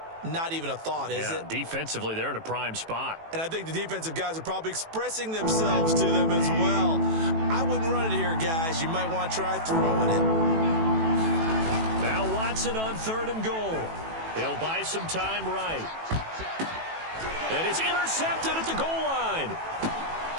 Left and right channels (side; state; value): left; late; 18 ms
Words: Not even a thought, is it? Defensively, they're in a prime spot. And I think the defensive guys are probably expressing themselves to them as well. I wouldn't run it here, guys. You might want to try throwing it. Now Watson on 3rd and goal. He'll buy some time right. And it's intercepted at the goal line.